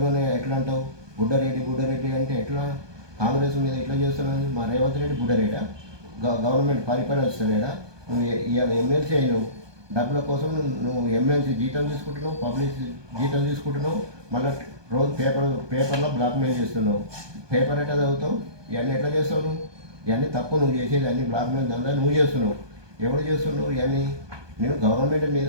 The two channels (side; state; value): left; late; 1.2 ms